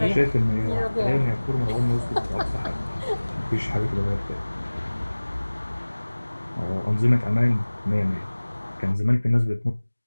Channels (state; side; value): inverted; both; correlation -1.00